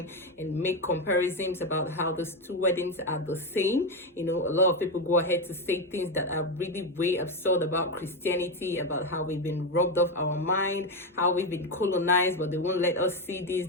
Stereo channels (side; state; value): both; normal; correlation 0.10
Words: and make comparisons about how those two weddings are the same. A lot of people go ahead to say things that are really way absurd about Christianity, about how we've been robbed of our mind, how we've been colonized, but they won't let us see this,